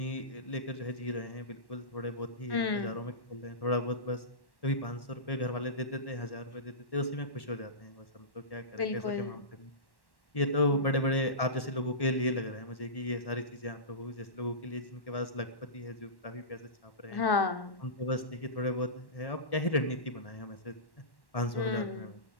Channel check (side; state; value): right; late; 1.1 ms